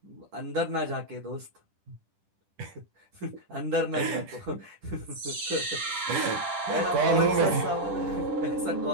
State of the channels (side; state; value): left; late; 10 ms